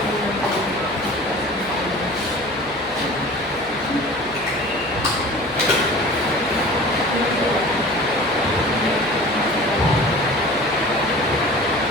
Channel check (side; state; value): left; noise; hum, 21 dB below the sound